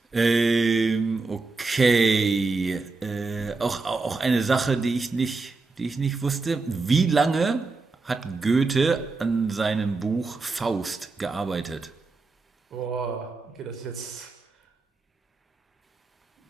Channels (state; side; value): quieter; left; 3.8 dB